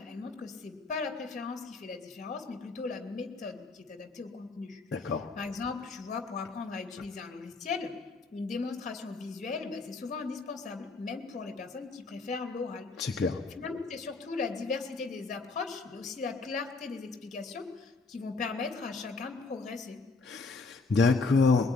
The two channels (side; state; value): right; quieter; 4.0 dB